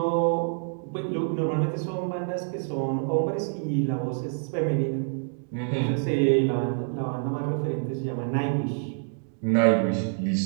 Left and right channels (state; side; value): silent; left; digital silence